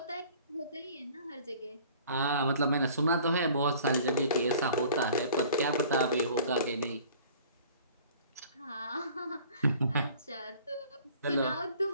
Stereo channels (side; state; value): both; inverted; correlation -0.50